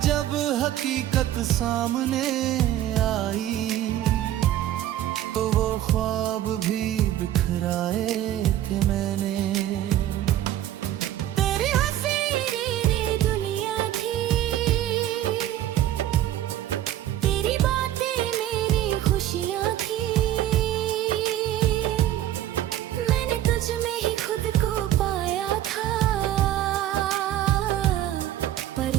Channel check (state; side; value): quieter; left; 12.6 dB